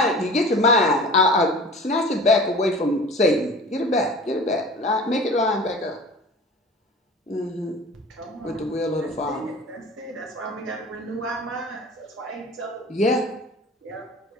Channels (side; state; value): both; normal; correlation 0.40